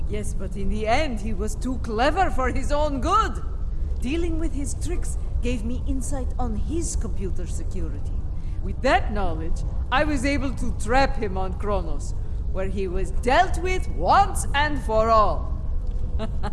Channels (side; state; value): both; identical; correlation 1.00